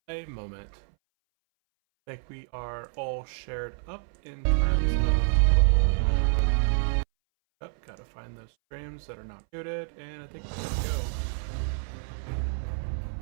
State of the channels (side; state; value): left; silent; 59 dB below the other